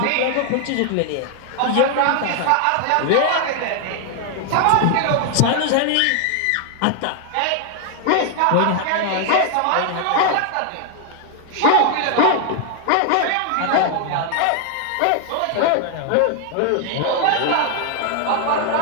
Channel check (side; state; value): both; different; correlation 0.00